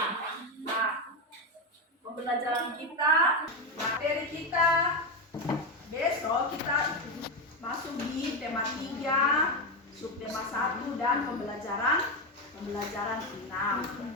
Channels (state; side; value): normal; both; correlation 0.11